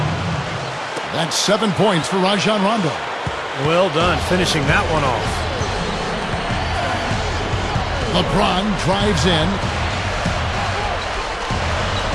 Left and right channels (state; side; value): identical; both; correlation 1.00